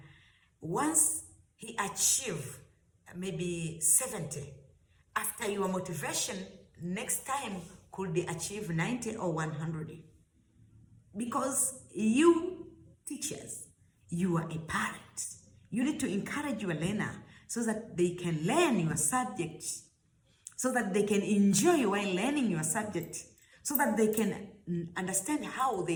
Once he achieves maybe 70, after your motivation, next time could achieve 90 or 100. Because you teachers, you are a parent. You need to encourage your learner so that they can learn your subject, so that they can enjoy while learning your subject, so that they can understand how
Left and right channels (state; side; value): identical; both; correlation 1.00